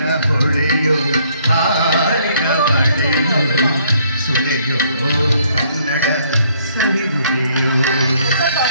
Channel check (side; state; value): both; inverted; correlation -0.65